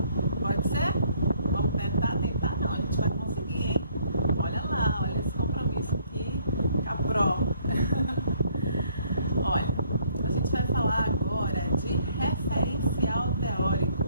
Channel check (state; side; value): inverted; both; correlation -0.64